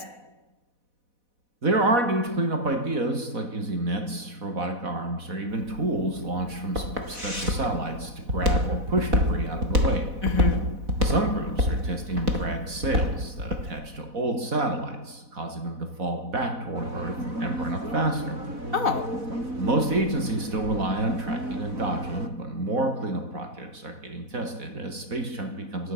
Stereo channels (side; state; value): left; late; 4.1 ms